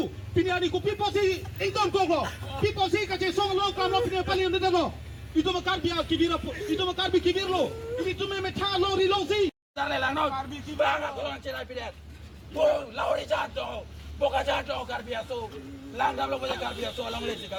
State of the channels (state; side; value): identical; both; correlation 1.00